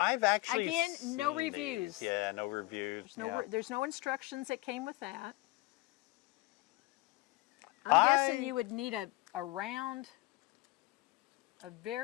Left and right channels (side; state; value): right; quieter; 20.7 dB